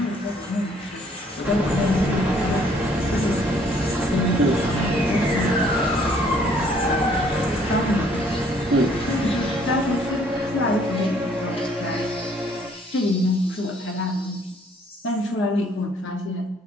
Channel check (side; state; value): both; normal; correlation 0.62